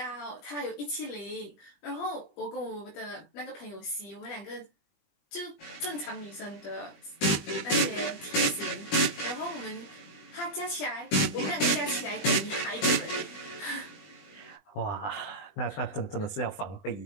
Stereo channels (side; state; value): right; late; 20 ms